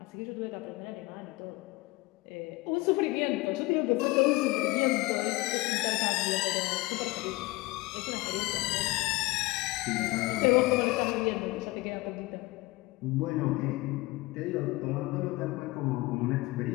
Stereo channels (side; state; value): right; quieter; 21.8 dB